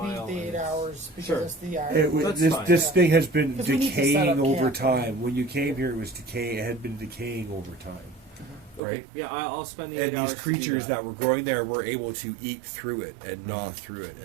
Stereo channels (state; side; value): drops out; left; at 8.8 s